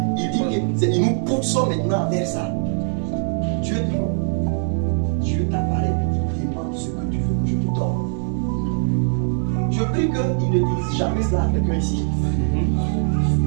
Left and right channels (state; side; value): silent; left; digital silence